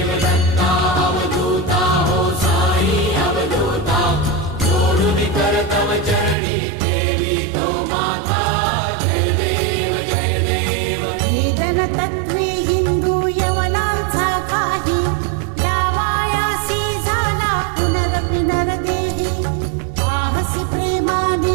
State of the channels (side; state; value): left; drops out; at 6.4 s